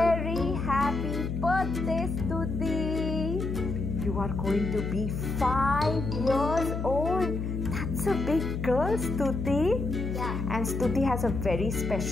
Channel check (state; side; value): noise; left; hum, 3 dB below the sound